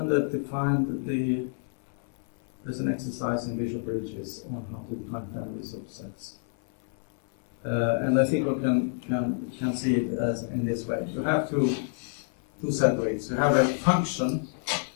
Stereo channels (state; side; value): silent; right; 57 dB below the other